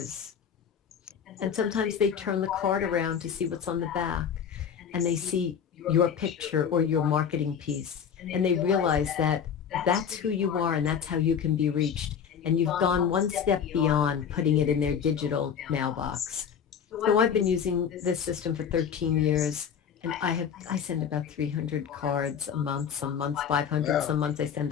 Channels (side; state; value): right; quieter; 7.6 dB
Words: And sometimes they turn the card around to see what's on the back, and they see your picture or your marketing piece, and they realize that that's who you are and that's how you can be reached. And you've gone one step beyond putting it in their digital mailbox. So I've been using this system for 13 years, and I send about 300 cards a month, some months 500, some months I send